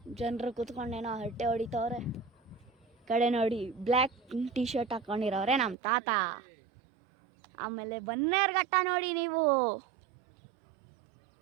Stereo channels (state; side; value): drops out; left; at 5.8 s